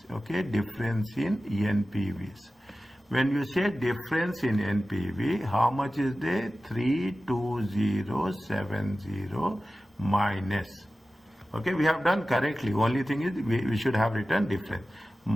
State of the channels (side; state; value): both; normal; correlation 0.95